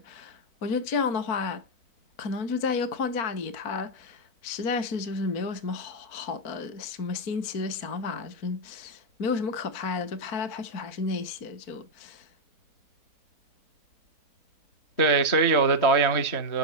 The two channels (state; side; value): late; right; 4.4 ms